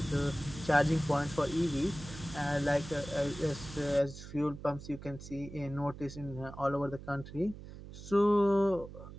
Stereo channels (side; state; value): right; noise; hum, 14 dB below the sound